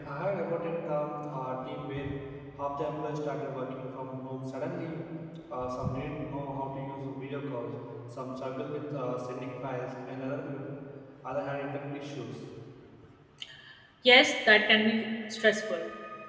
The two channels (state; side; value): identical; both; correlation 1.00